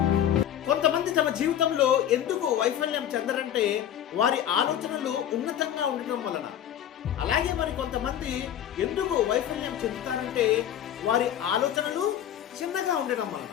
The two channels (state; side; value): quieter; right; 10.4 dB